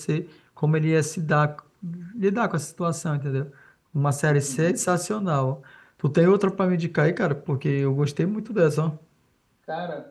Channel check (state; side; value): identical; both; correlation 1.00